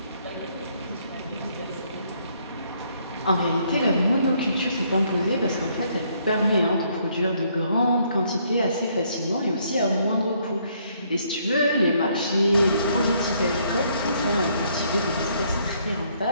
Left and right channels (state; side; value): inverted; both; correlation -0.69